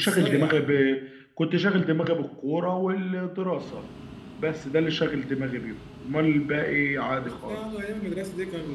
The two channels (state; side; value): identical; both; correlation 1.00